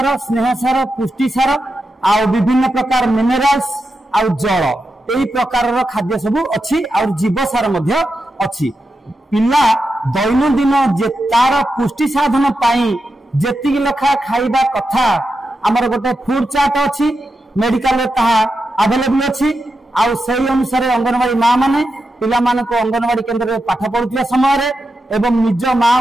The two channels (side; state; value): both; normal; correlation 0.88